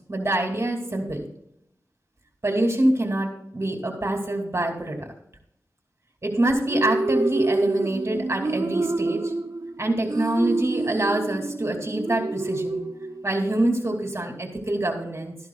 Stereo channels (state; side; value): normal; both; correlation 0.88